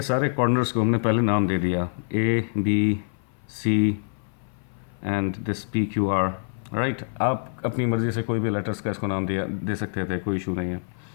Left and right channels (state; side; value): silent; right; 60 dB below the other